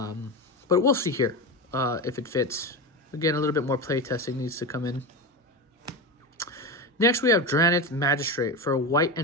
we'll see here if it fits. Again, a little bit more play testing needs to come in. Next, we have Dranith Magistrate. For white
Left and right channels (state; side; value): normal; both; correlation 0.20